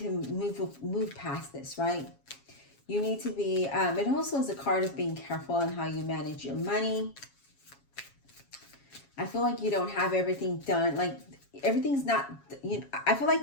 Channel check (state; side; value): late; right; 7.3 ms